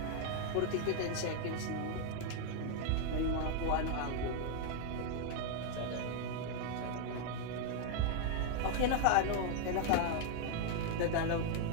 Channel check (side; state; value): both; different; correlation 0.00